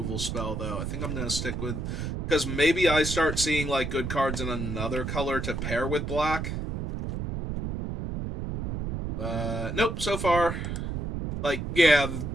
spell, though. I think I'm going to stick with... Because maybe I start seeing, like, good cards in another color to pair with black. Nope, so far... Like, yeah,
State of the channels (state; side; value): noise; right; rumble, 3 dB below the sound